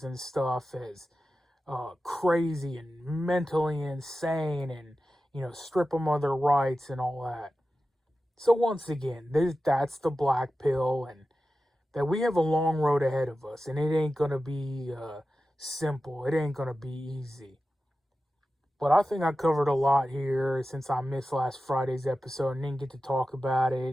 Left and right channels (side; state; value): both; normal; correlation 0.93